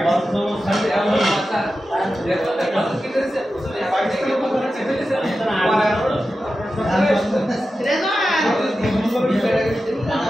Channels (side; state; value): both; normal; correlation 0.92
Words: বন্ধ সাথে আমার মাথা দেখো দেখো কি করেছে উসলে পাকিস্তানের উপর চেপে দিয়েছে